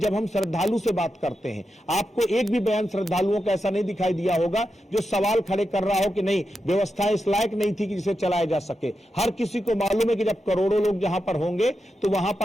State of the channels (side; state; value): both; normal; correlation 0.88